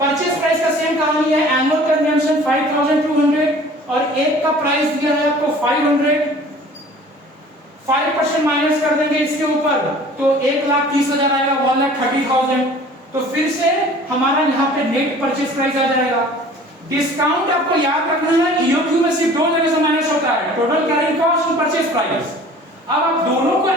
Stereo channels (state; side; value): normal; both; correlation 0.47